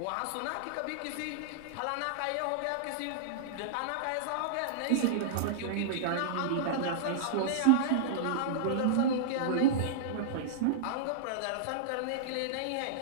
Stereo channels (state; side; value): different; both; correlation -0.02